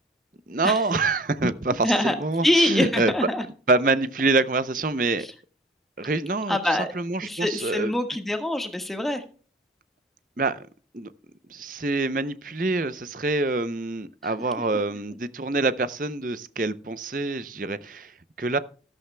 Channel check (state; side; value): normal; both; correlation 0.47